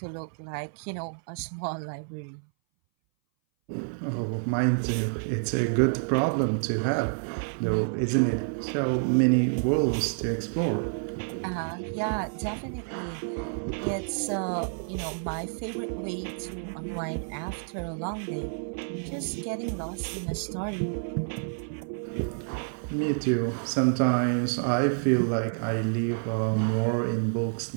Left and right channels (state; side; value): silent; left; 59 dB below the other